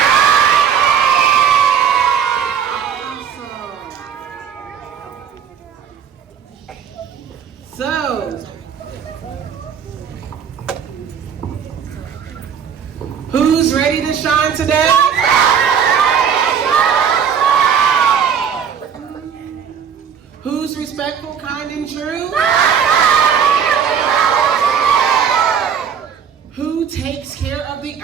Awesome. So, who's ready to shine today? Who's respectful, kind, and true? Who takes care of the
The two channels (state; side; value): quieter; left; 7.5 dB